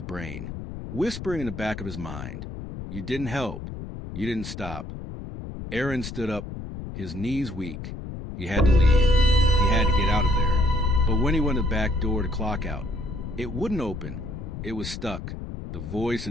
brain, whispering in the back of his mind. You didn't help. You didn't stop. Aaron stood up, his knees weak. He had to leave. He had to get out of there. But when he went to the back door to clock out, it wouldn't open. It was stuck. The voice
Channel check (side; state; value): left; noise; rumble, 9 dB below the sound